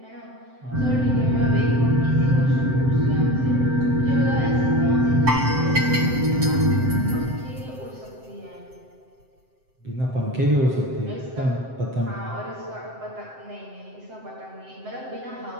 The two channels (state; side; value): late; left; 7.7 ms